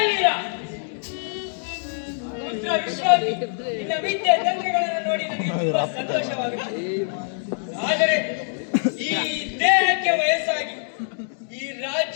ವೀರ. ಪುತ್ರ ವಿಶ್ವಾಸಿ, ನಿನ್ನ ವಿದ್ಯೆ ತಂತ್ರಗಳನ್ನು ನೋಡಿ ನನಗೆ ತುಂಬಾ ಸಂತೋಷವಾಗುತ್ತದೆ. ಆದರೆ ಈ ದೇಹಕ್ಕೆ ವಯಸ್ಸಾಗಿ ಈ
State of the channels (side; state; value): right; silent; digital silence